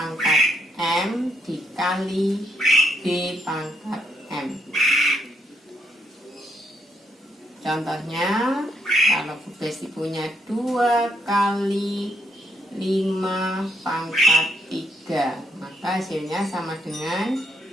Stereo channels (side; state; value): both; normal; correlation 0.75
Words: M dikali B pangkat M. Contohnya, kalau Bu Besti punya 2 kali 5 pangkat 3, maka hasilnya sama dengan